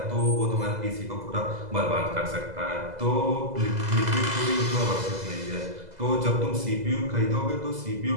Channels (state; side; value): late; left; 2.0 ms